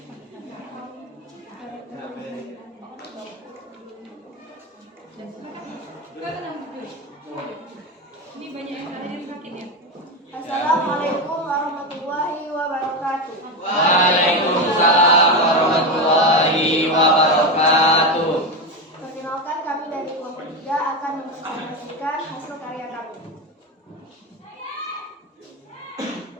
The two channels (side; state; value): both; normal; correlation 0.15